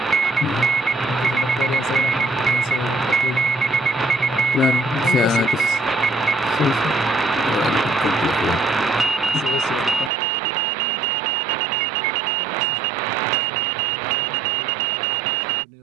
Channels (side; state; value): left; drops out; at 10.1 s